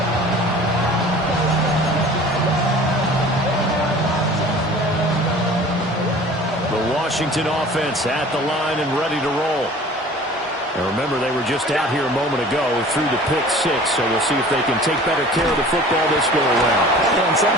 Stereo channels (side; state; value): both; normal; correlation 0.45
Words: Washington offense at the line and ready to roll. And remember, they were just out here a moment ago through the pick-6, so we'll see if they can take better care of the football this go-around. And